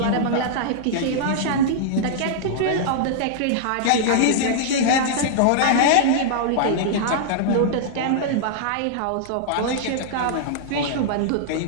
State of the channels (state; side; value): different; both; correlation -0.01